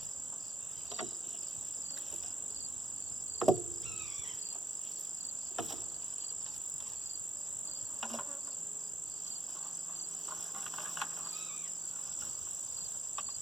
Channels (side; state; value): both; normal; correlation 0.82